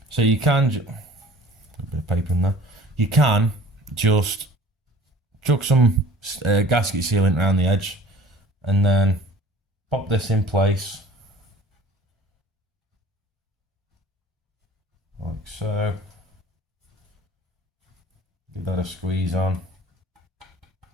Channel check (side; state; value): both; normal; correlation 0.47